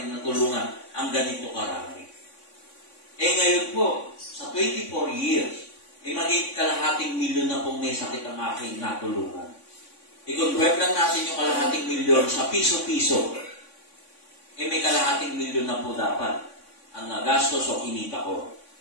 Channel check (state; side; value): late; right; 3.5 ms